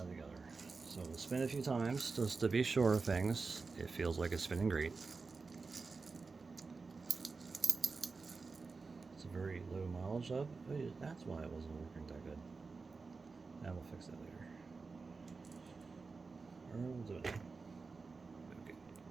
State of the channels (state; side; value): quieter; left; 4.3 dB